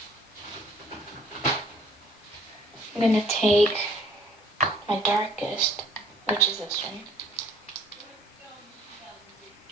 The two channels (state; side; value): normal; both; correlation 0.57